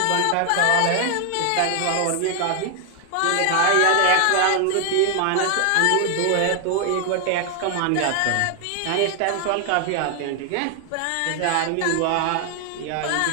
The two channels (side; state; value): both; different; correlation 0.00